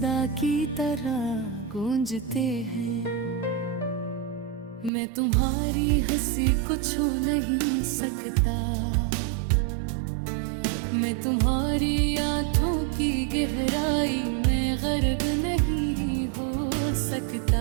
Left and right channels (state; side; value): drops out; left; at 4.9 s